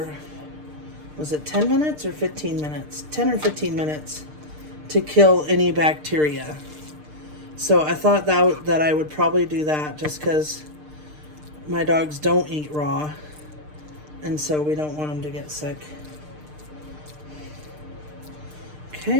was it 10 minutes or 15 minutes? 10 or 15 minutes to kill any bacteria. So I thought that I would probably do that just because my dogs don't eat raw. And so we don't want them to get sick.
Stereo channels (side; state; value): left; late; 6.6 ms